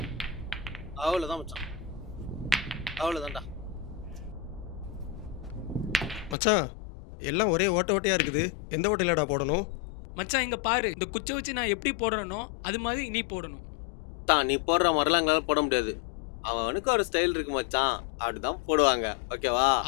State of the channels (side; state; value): right; drops out; at 6.4 s